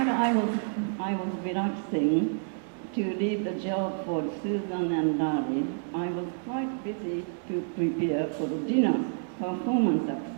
I was relaxing to leave the job for Susan and Larry, I was quite busy to prepare for the dinner performance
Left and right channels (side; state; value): left; silent; digital silence